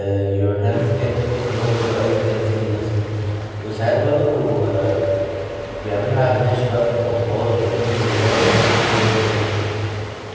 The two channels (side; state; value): both; identical; correlation 1.00